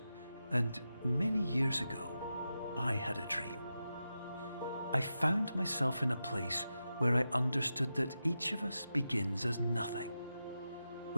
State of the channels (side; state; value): both; inverted; correlation -0.90